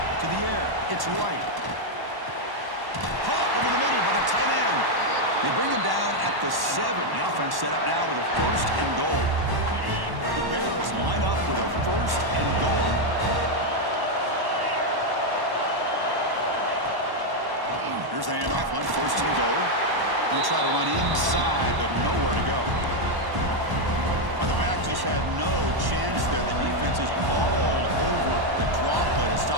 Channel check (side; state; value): left; late; 1.1 ms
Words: To the air. It's right. Caught over the middle by the tight end. They bring him down at the 7. The offense set up now with a first and goal. The Bears line up with a first and goal. Here's the handoff on first and goal. They'll try to run inside, but nowhere to go. The back just had no chance there. The defense is all over the draw play to